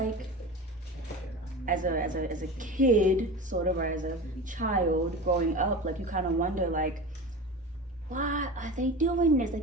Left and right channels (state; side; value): normal; both; correlation 0.31